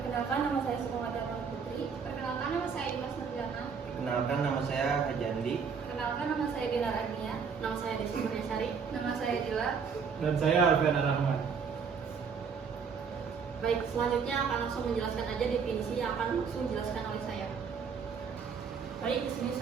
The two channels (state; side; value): quieter; left; 6.0 dB